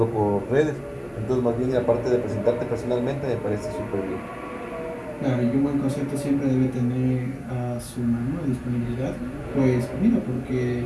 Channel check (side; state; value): both; identical; correlation 1.00